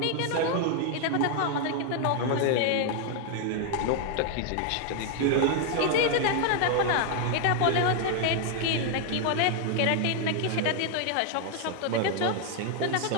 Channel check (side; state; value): both; different; correlation 0.00